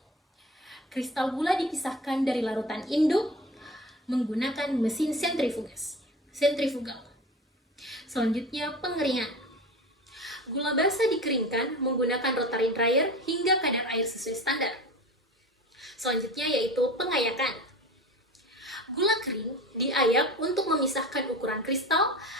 Kristal gula dipisahkan dari larutan induk menggunakan mesin sentrifugal. Selanjutnya pengeringan. Gula basah dikeringkan menggunakan rotary dryer hingga kadar air sesuai standar. Selanjutnya yaitu pengayakan. Gula kering diayak untuk memisahkan ukuran kristal.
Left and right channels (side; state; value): both; normal; correlation 0.34